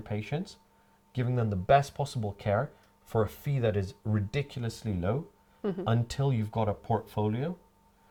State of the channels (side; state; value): both; identical; correlation 1.00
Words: patients, giving them the best possible care for a fee that is ridiculously low, until you've got a portfolio,